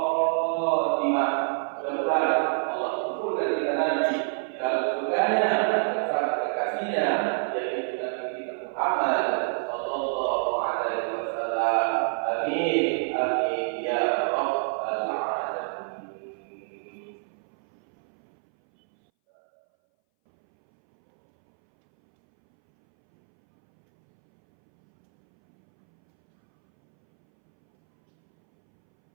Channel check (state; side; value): silent; left; 60 dB below the other